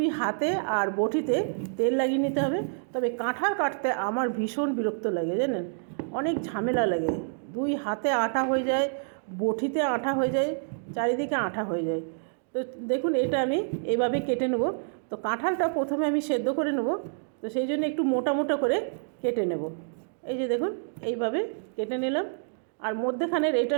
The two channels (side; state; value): left; silent; digital silence